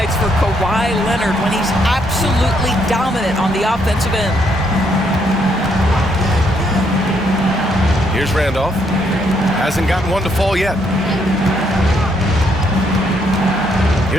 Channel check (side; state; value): both; normal; correlation 0.73